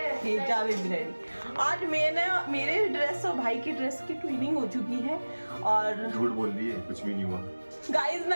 आज मैंने मेरे ड्रेस और भाई की ड्रेस की ट्विनिंग हो चुकी है, और झूठ बोल रही है, कुछ भी नहीं हुआ गाइस।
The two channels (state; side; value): inverted; both; correlation -1.00